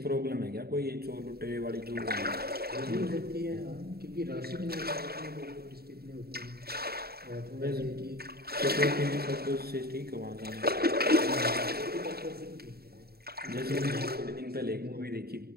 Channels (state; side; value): late; left; 0.45 ms